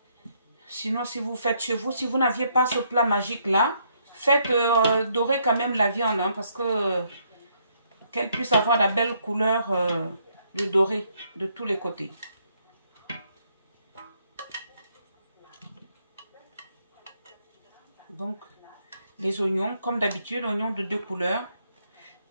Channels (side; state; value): both; inverted; correlation -0.72